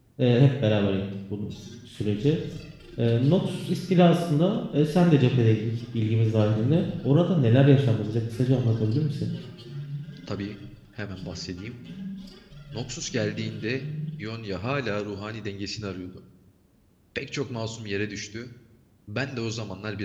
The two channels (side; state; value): both; identical; correlation 1.00